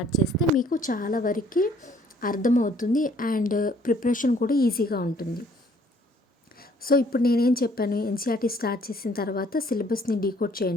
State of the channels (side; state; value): both; normal; correlation 0.61